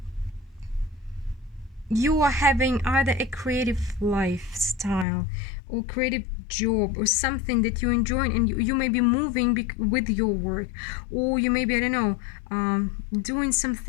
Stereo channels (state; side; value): drops out; right; at 5.1 s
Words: you are having either a creative lifestyle or creative job or something that you enjoy, and you may be moving with your work, or you may be, I don't know, doing